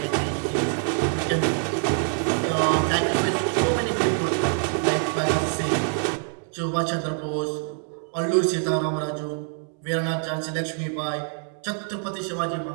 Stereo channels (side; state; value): left; silent; 57 dB below the other